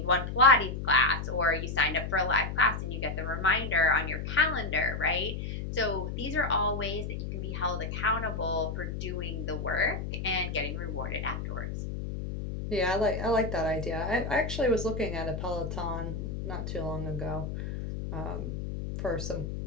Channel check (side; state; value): left; noise; hum, 5 dB below the sound